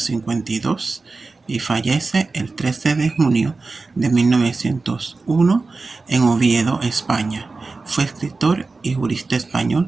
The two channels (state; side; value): quieter; left; 3.8 dB